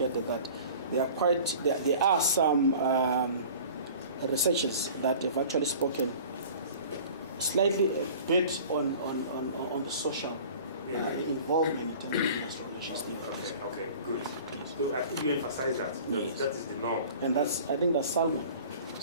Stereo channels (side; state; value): both; inverted; correlation -0.44